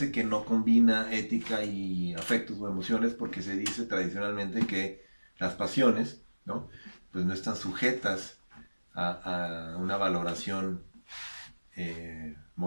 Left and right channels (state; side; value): inverted; both; correlation -1.00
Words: que no combina ética y afectos o emociones, porque se dice tradicionalmente que las pasiones, ¿no? Pues no están sujetas a una valoración